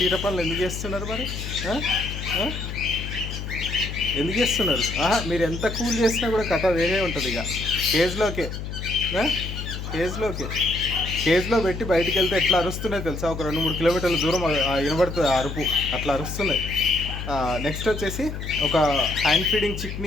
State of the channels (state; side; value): noise; left; hum, 7 dB below the sound